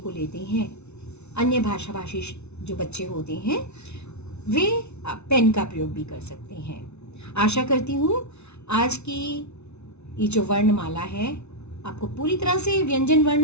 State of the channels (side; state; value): right; late; 0.81 ms